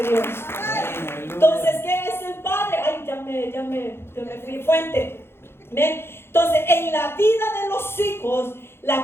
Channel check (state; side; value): late; right; 0.12 ms